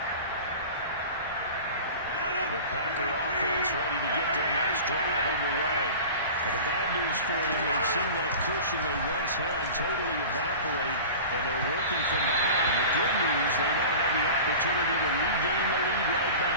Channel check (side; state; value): both; inverted; correlation -0.37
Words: The Packer offense ready to get their next drive underway. But the bad news for them, they've seen that cushion they once had totally evaporate, and they're working from behind. The good news, they now have the opportunity to regain the lead right